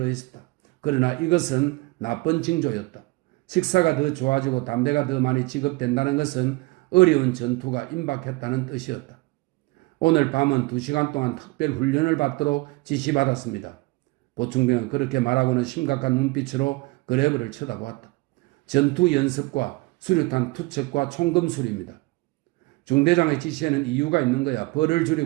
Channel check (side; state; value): left; quieter; 23.3 dB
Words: 그러나 이것은 나쁜 징조였다. 식사가 더 좋아지고 담배가 더 많이 지급된다는 것은 어려운 전투가 임박했다는 뜻이었다. 오늘 밤은 2시간 동안 특별 훈련을 받도록 지시받았습니다. 보충병은 그렇게 말하고는 심각한 눈빛으로 그레브를 쳐다보았다. 전투 연습과 수류탄 투척과 총검술입니다. 중대장의 지시에는 이유가 있는 거야. 벌을